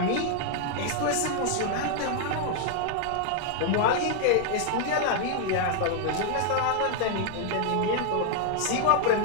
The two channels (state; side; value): different; both; correlation 0.00